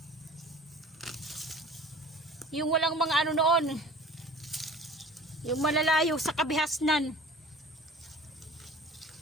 ano noon. Yung malalayo sa kabihasnan.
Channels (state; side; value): normal; both; correlation 0.45